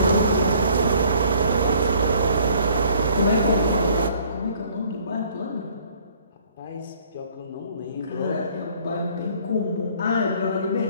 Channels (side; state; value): both; inverted; correlation -0.58